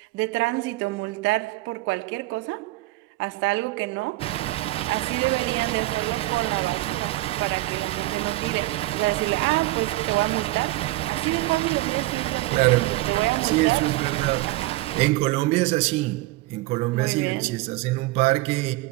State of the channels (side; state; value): left; quieter; 19.0 dB